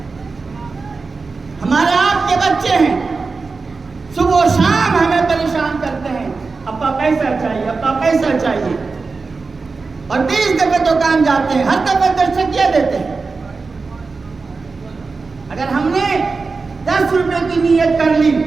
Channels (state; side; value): quieter; left; 4.3 dB